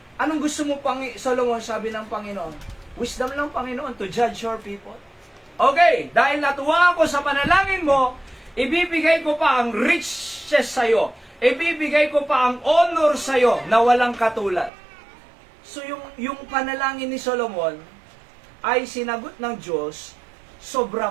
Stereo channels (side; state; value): left; drops out; at 14.7 s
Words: Anong gusto mo, Solomon, sabi ng Panginoon? Wisdom lang, Panginoon, to judge your people. Okay, dahil natuwa ako sa panalangin mo, ibibigay ko pa ang riches sa'yo. Ibibigay ko pa ang honor sa'yo na walang katulad. So yung panalangin ni Solomon ay sinagot ng Diyos, sobra